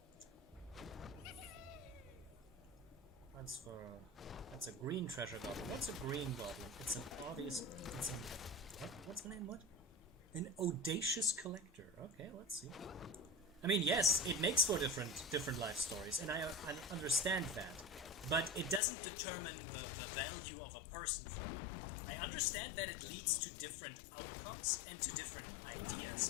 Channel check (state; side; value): drops out; right; at 18.8 s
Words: That's a green treasure goblin. What's a green goblin? It's an obvious. It's an what's the name? What? An audacious collector. Okay, let's see. I mean, yes, it makes for different life stories, and I understand that, but it doesn't determine the value of a person for me. I understand that it leads to different outcomes and to different